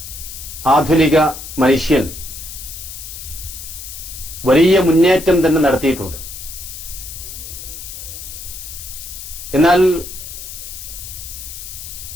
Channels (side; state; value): left; noise; hiss, 11 dB below the sound